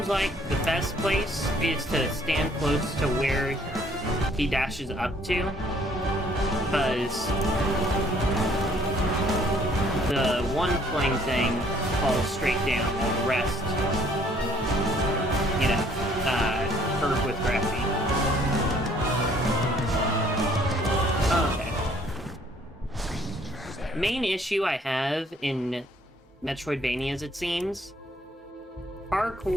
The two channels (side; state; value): both; normal; correlation 0.61